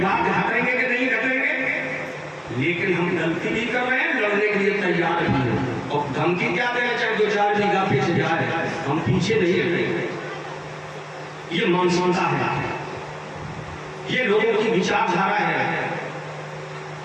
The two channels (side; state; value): both; identical; correlation 1.00